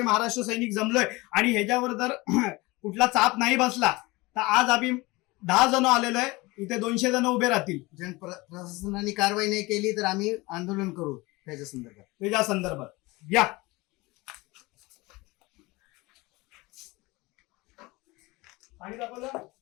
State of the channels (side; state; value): right; quieter; 22.6 dB